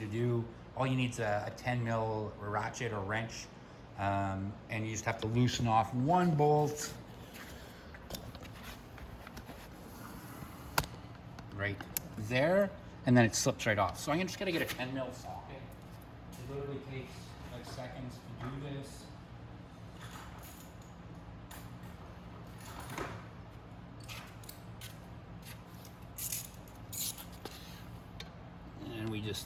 do. All you need is a 10 mil ratchet or wrench, and you just have to loosen off one bolt right there, and then it slips right off. So I'm just going to get a 10 mil socket. It literally takes like seconds to do this. And we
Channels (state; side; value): identical; both; correlation 1.00